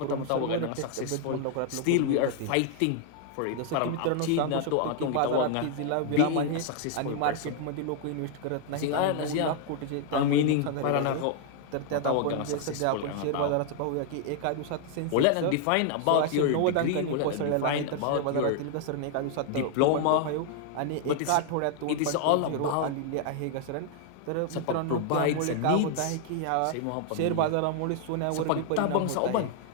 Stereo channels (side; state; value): both; different; correlation 0.00